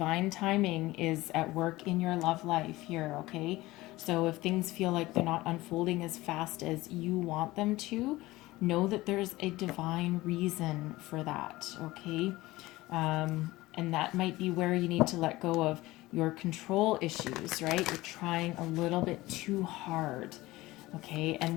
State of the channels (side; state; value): right; quieter; 18.9 dB